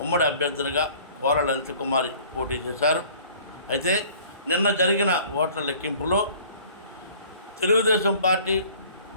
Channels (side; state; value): both; inverted; correlation -0.51